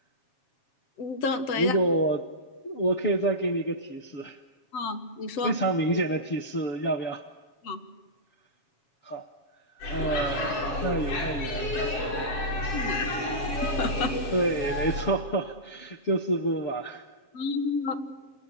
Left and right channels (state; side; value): late; right; 7.2 ms